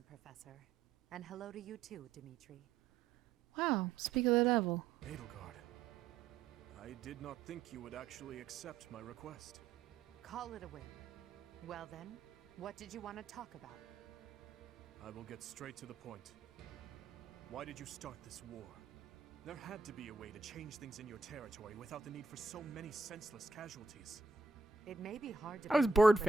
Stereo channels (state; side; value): quieter; left; 4.4 dB